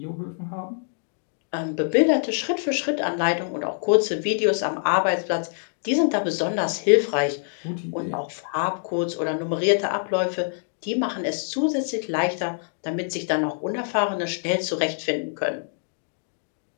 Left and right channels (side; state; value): right; silent; digital silence